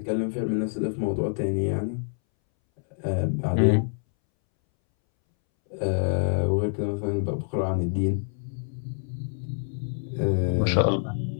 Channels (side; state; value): right; silent; 61 dB below the other